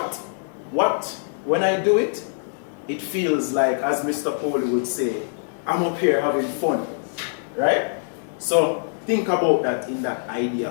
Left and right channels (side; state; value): right; silent; 63 dB below the other